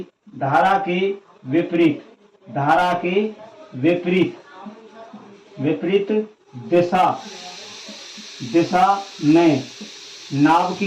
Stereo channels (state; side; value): identical; both; correlation 1.00